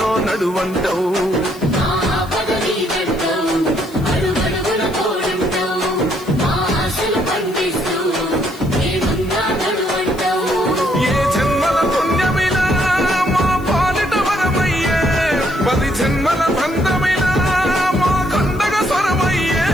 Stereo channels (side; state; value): left; noise; hiss, 22 dB below the sound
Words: నడువంటావు. ఏ జన్మల పుణ్యమిలా మా పాలిట వరమయ్యే, 10 జన్మల బంధమిలా మా కండగ స్వరమయ్యే,